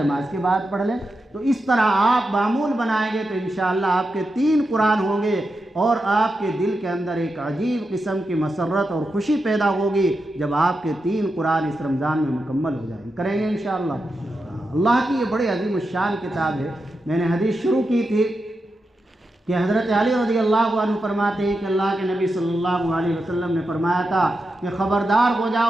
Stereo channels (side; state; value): both; normal; correlation 0.88